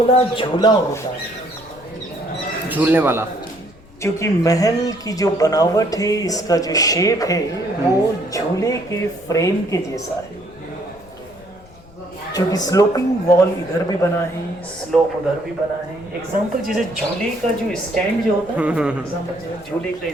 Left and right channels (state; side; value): noise; left; rumble, 24 dB below the sound